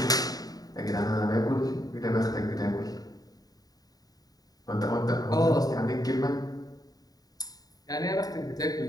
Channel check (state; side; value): late; right; 0.18 ms